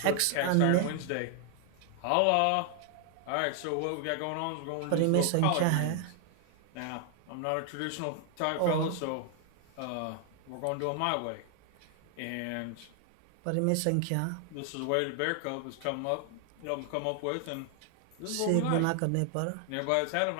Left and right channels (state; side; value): different; both; correlation 0.00